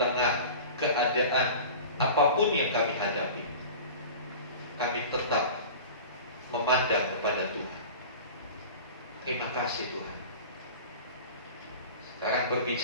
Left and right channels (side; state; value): both; inverted; correlation -0.37